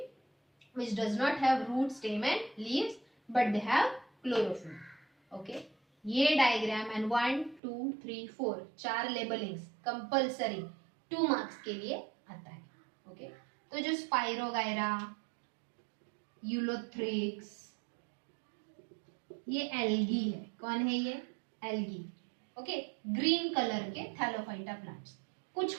which does not have root, stem and leaves but they have chlorophyll. Okay, ये डायग्राम एंड 1 2 3 4 चार लेबलिंग्स कंपल्सरी 2 मार्क्स के लिए आता है. ओके, तो जो स्पाइरोगायरा, यूलोथ्रिक्स, ये एल्गी है. कौन है ये? एल्गी. ओके, ग्रीन कलर के थैलोफाइटा प्लांट्स. कुछ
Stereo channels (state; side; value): drops out; left; at 7.6 s